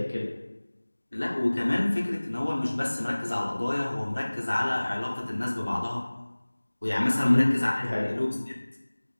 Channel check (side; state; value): both; inverted; correlation -1.00